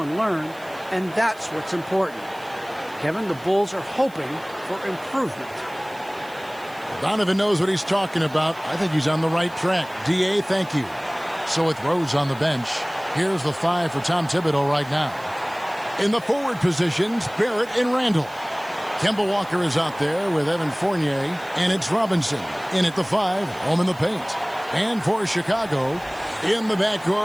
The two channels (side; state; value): right; noise; hiss, 24 dB below the sound